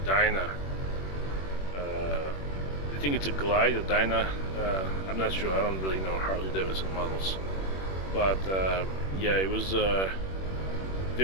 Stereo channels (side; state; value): right; late; 21 ms